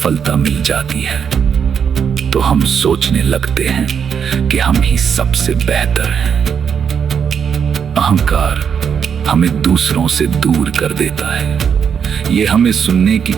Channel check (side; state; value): left; quieter; 7.2 dB